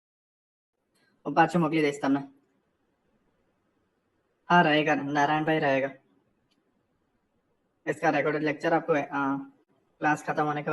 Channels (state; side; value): identical; both; correlation 1.00